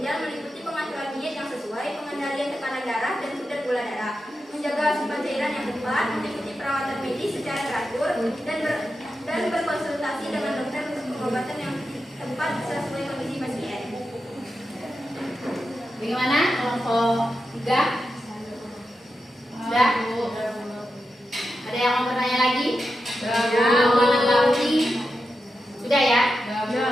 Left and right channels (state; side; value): normal; both; correlation 0.89